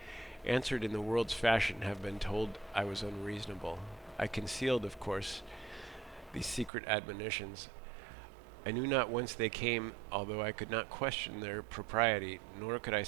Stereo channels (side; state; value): left; drops out; at 6.7 s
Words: answered in the world's fashion, have been told I was unreasonable. I concealed, of course, these secret admonitions. I knew not whence they came, although I could not question their propriety, nor could I